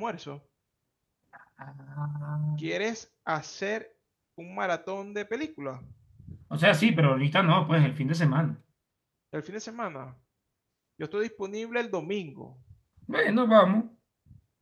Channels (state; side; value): identical; both; correlation 1.00